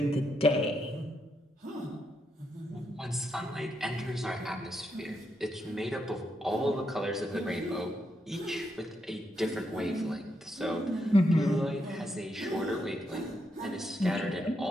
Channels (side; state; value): both; normal; correlation 0.81